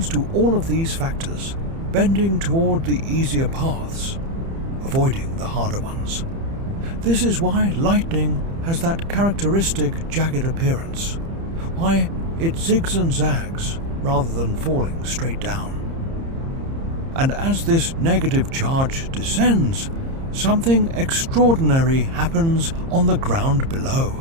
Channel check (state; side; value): late; left; 30 ms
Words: to all of these factors, bending toward the easier paths, avoiding the harder ones. This is why lightning has that characteristic jagged appearance, why it zigs and zags rather than falling straight down. And as this negative charge descends, something extraordinary happens on the ground